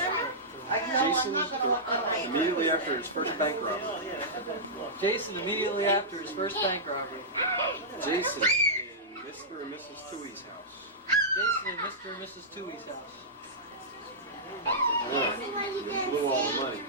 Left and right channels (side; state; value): both; normal; correlation -0.14